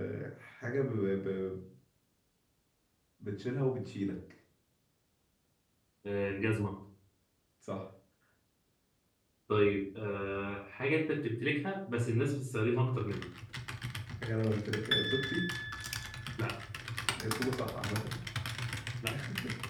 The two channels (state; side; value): identical; both; correlation 1.00